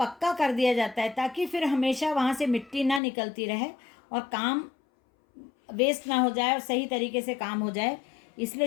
कर दिया जाता है ताकि फिर हमेशा वहाँ से मिट्टी ना निकलती रहे और काम वेस्ट ना हो जाए और सही तरीके से काम हो जाए। इसलिए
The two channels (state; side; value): drops out; right; at 3.0 s